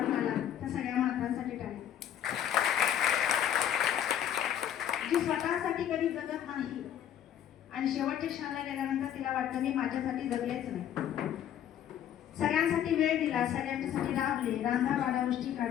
आला त्या सगळ्या मातांसाठी टाळी. जी स्वतःसाठी कधी जगत नाही आणि शेवटच्या क्षणाला गेल्यानंतर तिला वाटतं मी माझ्यासाठी जगलेच नाही. सगळ्यांसाठी वेळ दिला, सगळ्यांच्यासाठी राबले, रांधा वाडा उष्टी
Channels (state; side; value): quieter; right; 10.3 dB